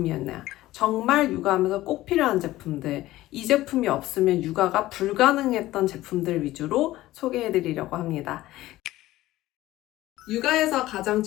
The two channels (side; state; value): right; quieter; 16.3 dB